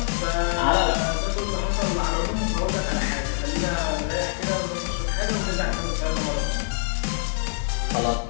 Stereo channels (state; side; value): silent; right; digital silence